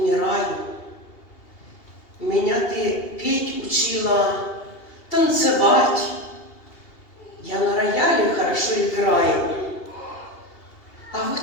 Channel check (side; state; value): right; late; 2.8 ms